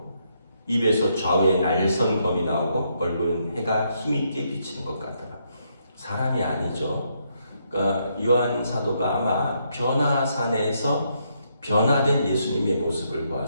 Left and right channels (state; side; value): inverted; both; correlation -0.76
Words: 입에서 좌우에 날선 검이 나오고, 얼굴은 해가 힘있게 비치는 것 같더라. 사람이 아니죠. 그러니까 요한 사도가 아마 변화산에서 변화된 예수님의 모습을